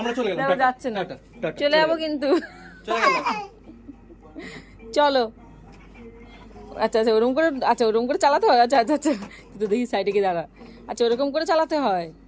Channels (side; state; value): both; identical; correlation 1.00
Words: চলে গেলাম, যাচ্ছে না, চলে যাবো কিন্তু। চলো। আচ্ছা আচ্ছা, ওরকম করে, আচ্ছা ওরকম করে চালাতে হয়। আচ্ছা আচ্ছা আচ্ছা, তো দেখি সাইডে গিয়ে দাঁড়া। আচ্ছা ওরকম করে চালাতে হয়।